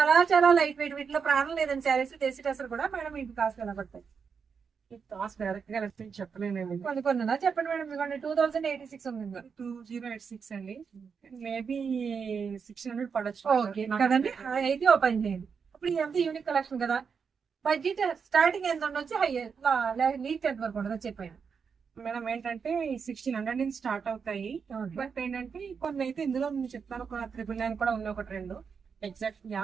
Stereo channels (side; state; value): left; quieter; 6.1 dB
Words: చాలా లైట్ వెయిట్. వీటిలో ప్రాణం లేదని శారీస్. దేశీ డ్రెస్సులు కూడా మేడం మీకు కాస్ట్ ఎలా పడతాయి? కాస్ట్ డైరెక్ట్ గా చెప్పలేను. కొన్ని కొన్ని చెప్పండి మేడం. మీకు 2086 ఉంది. 2086 అండి. మేబీ 600 పడచ్చు. ఓకే కదండి. అయితే ఓపెన్ చేయండి. ఇప్పుడు ఇదంతా యూనిక్ కలెక్షన్ కదా. బడ్జెట్ స్టార్టింగ్ ఎంత ఉండొచ్చు, హై లీక్ ఎంత వరకు ఉండదు చెప్పండి మేడం. ఏంటంటే 1600 నుంచి స్టార్ట్ అవుతాయి. బట్ ఏంటంటే కొన్ని అయితే ఇందులో నేను చెప్తాను. ఒక 999 కూడా ఉన్నాయి, ఒకటి రెండు ఎగ్జాక్ట్